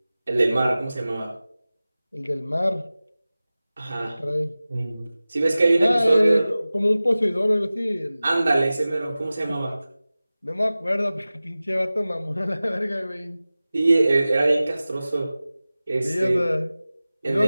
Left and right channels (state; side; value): inverted; both; correlation -0.96